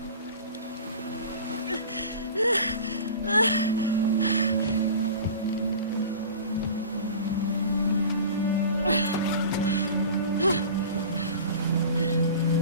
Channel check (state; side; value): inverted; both; correlation -0.37